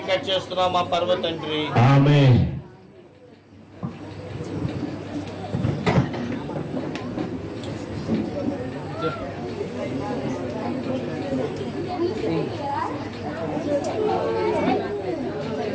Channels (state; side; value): identical; both; correlation 1.00